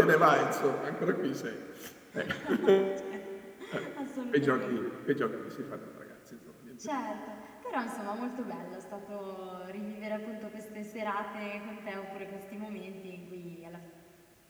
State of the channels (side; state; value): both; identical; correlation 1.00